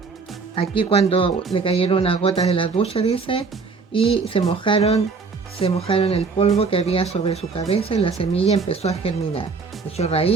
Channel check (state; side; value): quieter; left; 4.7 dB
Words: Aquí cuando le cayeron unas gotas de la ducha, dice, y se mojaron el polvo que había sobre su cabeza y la semilla empezó a germinar. Echó